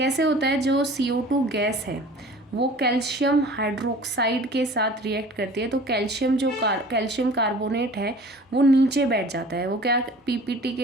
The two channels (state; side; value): normal; both; correlation 0.45